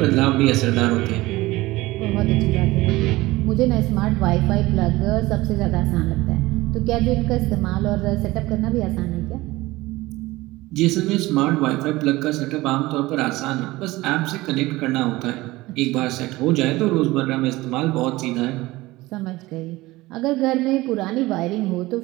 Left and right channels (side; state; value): left; quieter; 19.3 dB